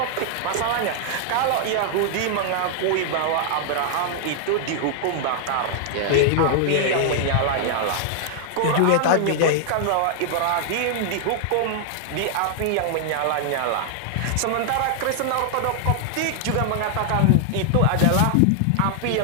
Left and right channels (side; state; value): both; different; correlation -0.01